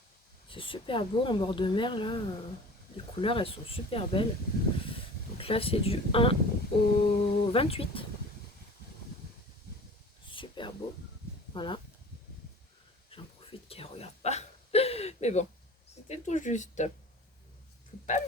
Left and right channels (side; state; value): both; normal; correlation 0.41